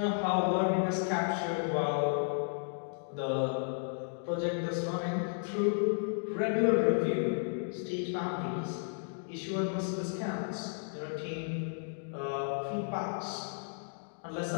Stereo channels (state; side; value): silent; right; digital silence